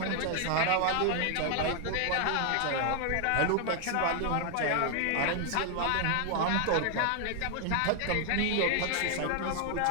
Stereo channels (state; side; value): different; both; correlation 0.00